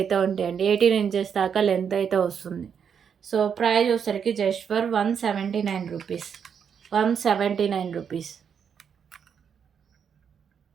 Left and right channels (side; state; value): left; quieter; 7.4 dB